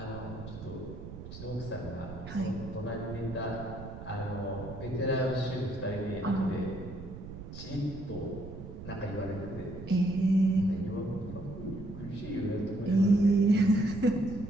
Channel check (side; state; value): right; noise; rumble, 11 dB below the sound